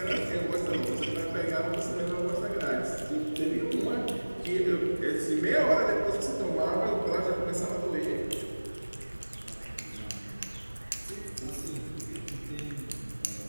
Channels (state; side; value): inverted; both; correlation -1.00